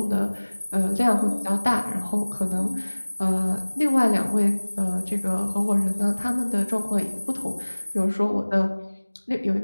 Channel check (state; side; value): inverted; both; correlation -1.00